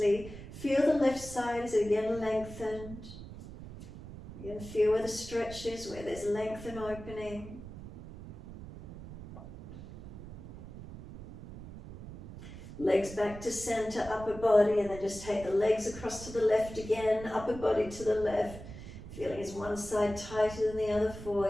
Feel the left side as it again lengthened. You can feel where the stretch is, where there's length and opening. Legs back to center, upper body, and then just take the legs across to the left again, upper body to the left. Feeling is one side tighter than the other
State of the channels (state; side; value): noise; right; rumble, 13 dB below the sound